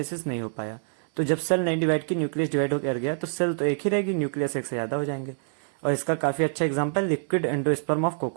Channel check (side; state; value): left; silent; 61 dB below the other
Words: नहीं हो पाया। तो जब सेल नहीं डिवाइड की, न्यूक्लियस डिवाइड कर गया, तो सेल तो एक ही रहेगी, न्यूक्लियस एक से ज़्यादा हो जाएंगे। और इसका काफ़ी अच्छा example liquid endosperm of